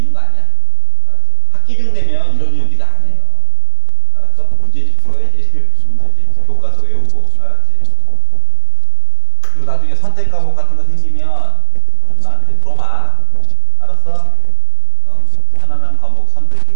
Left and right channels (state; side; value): different; both; correlation 0.00